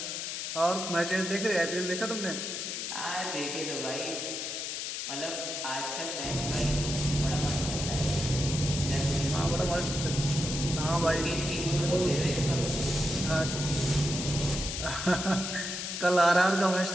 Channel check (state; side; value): noise; left; hiss, 4 dB below the sound